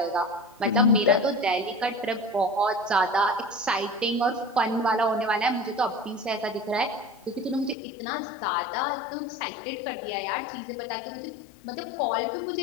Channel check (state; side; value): drops out; right; at 7.8 s